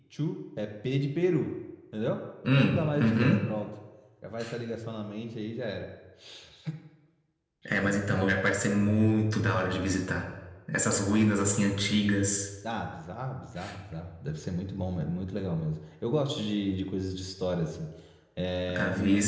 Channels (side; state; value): both; identical; correlation 1.00